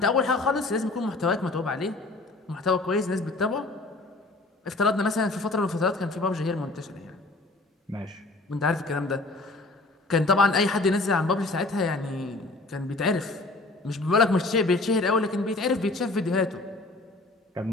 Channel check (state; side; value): quieter; right; 3.1 dB